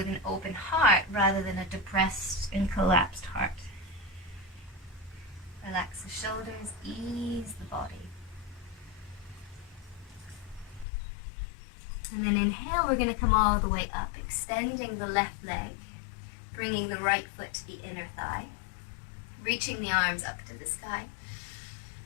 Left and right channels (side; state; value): right; drops out; at 10.9 s